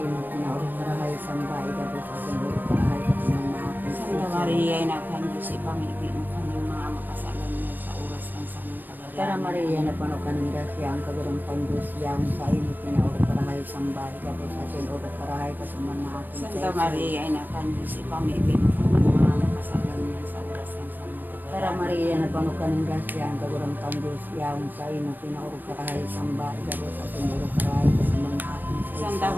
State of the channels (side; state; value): left; late; 0.088 ms